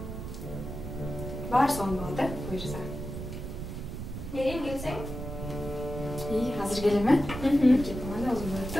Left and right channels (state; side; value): noise; right; rumble, 7 dB below the sound